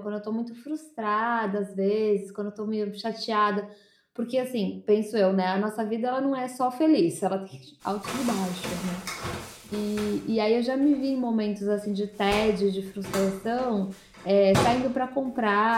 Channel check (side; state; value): both; identical; correlation 1.00